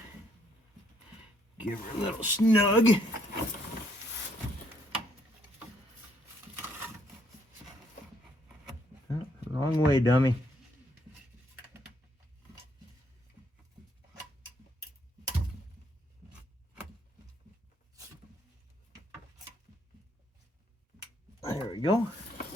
give her a little snug. Oh, wrong way, dummy. There we go.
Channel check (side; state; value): both; normal; correlation 0.70